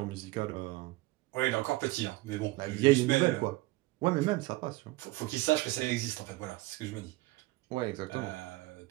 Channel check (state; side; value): quieter; left; 20.5 dB